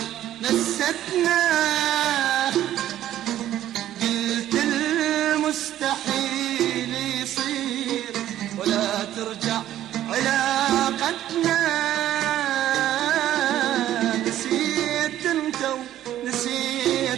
نستنا، قلت المستحيل يصير ولا ترجع علاقتنا. نسيت انت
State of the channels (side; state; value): left; quieter; 12.5 dB